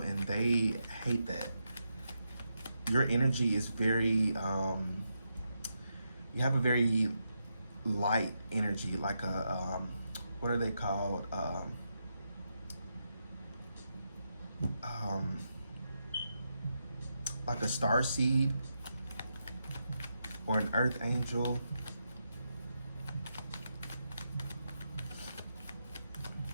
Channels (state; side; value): inverted; both; correlation -0.84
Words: and they hate that. Your energy is very, you have a very light energy, like a, what are they called? Like a star seed or an earth angel.